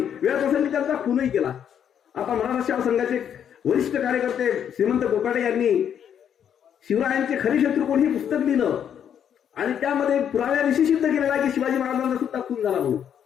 वेळप्रसंगी त्यांचा खूनही केला. आता मराठा सेवा संघाचे वरिष्ठ कार्यकर्ते श्रीमंत कोकाटे यांनी शिवरायांचे खरे शत्रू कोण हे पुस्तक लिहिलं आणि त्यामध्ये पुराव्याविषयी सिद्ध केलेला आहे की शिवाजी महाराजांचा सुद्धा खून झाला म्हणून.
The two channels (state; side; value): quieter; right; 8.8 dB